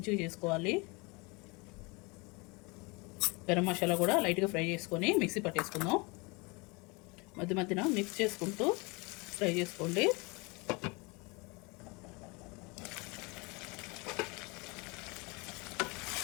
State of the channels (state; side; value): quieter; right; 27.6 dB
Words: చేసుకోవాలి. గరం మసాలా కూడా లైట్గా ఫ్రై చేసుకొని మిక్సీ పట్టేసుకుందాం. మధ్య మధ్యన మిక్స్ చేసుకుంటూ ఫ్రై చేసుకోండి.